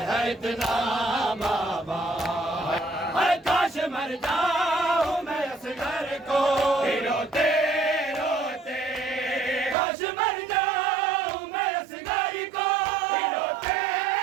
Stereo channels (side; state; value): left; drops out; at 9.8 s